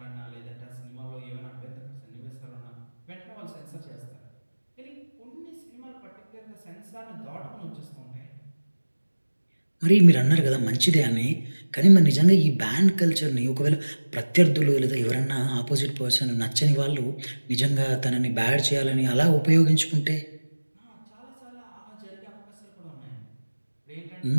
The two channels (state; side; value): inverted; both; correlation -1.00